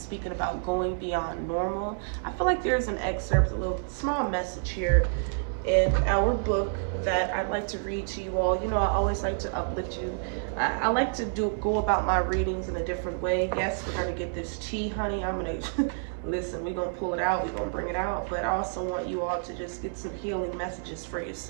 speaking about going beyond normal. I feel like there's an excerpt, a little small message here in our book that I'd like to read to you all. I always like to uplift you. I like to go about my readings in a different way. Yes, we're gonna get this tea, honey. I'm gonna listen, we're gonna pull it out, we're gonna bring it out, but I also want you all to just get some healing messages for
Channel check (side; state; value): left; silent; 59 dB below the other